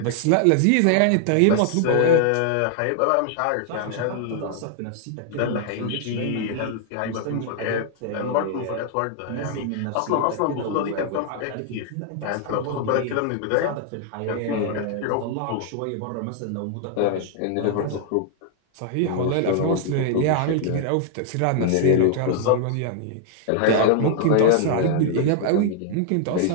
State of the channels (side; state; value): both; different; correlation 0.00